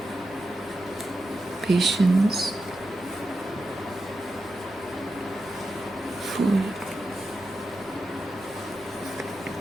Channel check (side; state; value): right; noise; hum, 29 dB below the sound